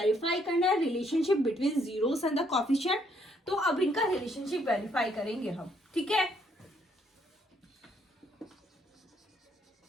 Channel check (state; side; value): normal; both; correlation 0.70